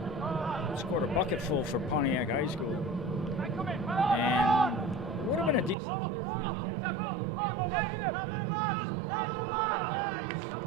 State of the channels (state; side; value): drops out; left; at 5.8 s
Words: Scored a bucketful for Pontiac High School, and would have been a decent player for the academy, but he just, some other priorities